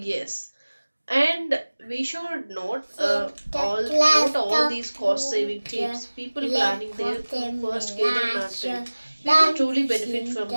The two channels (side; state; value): both; inverted; correlation -1.00